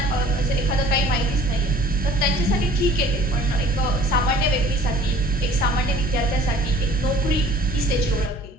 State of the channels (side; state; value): both; normal; correlation 0.50